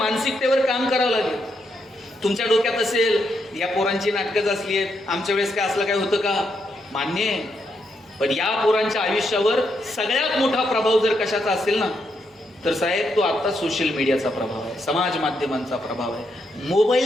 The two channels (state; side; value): normal; both; correlation 0.80